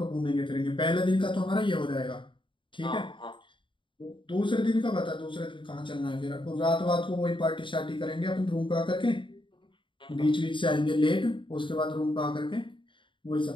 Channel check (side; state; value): right; late; 0.24 ms